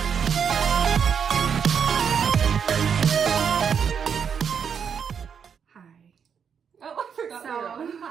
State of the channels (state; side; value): quieter; left; 7.1 dB